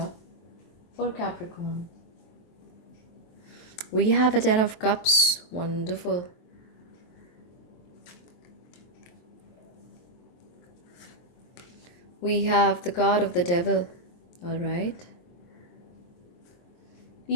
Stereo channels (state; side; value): late; right; 23 ms